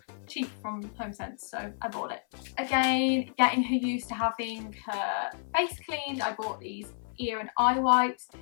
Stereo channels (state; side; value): silent; right; 58 dB below the other